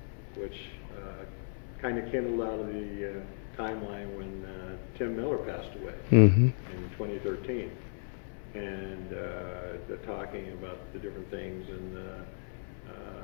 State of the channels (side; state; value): right; silent; 55 dB below the other